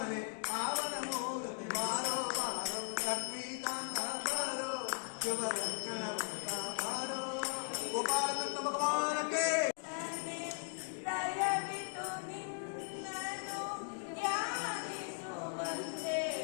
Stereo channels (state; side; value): silent; right; digital silence